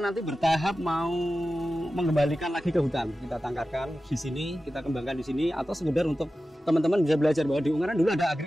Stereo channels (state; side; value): normal; both; correlation 0.94